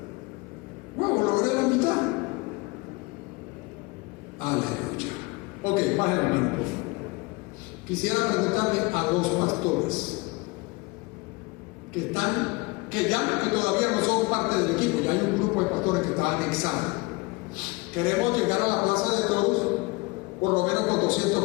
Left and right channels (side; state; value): right; quieter; 25.2 dB